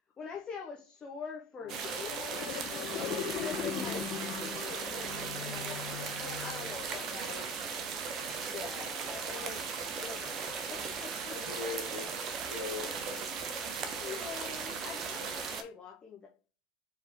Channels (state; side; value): normal; both; correlation 0.37